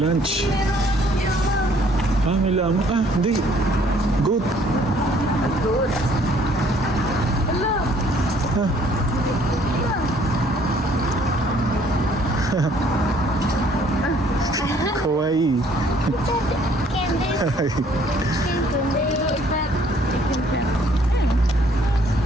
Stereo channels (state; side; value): normal; both; correlation 0.61